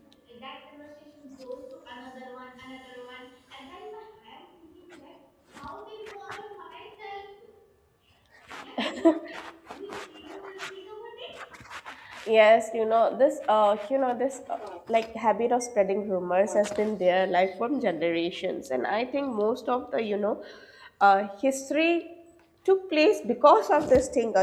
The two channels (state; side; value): identical; both; correlation 1.00